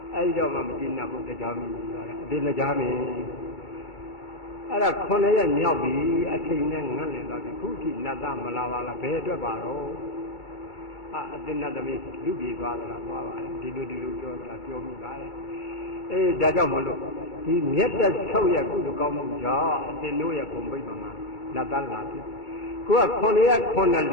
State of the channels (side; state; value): right; late; 2.3 ms